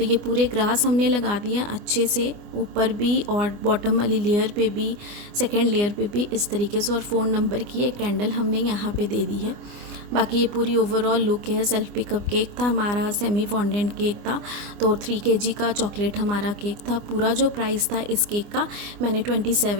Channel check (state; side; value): late; left; 24 ms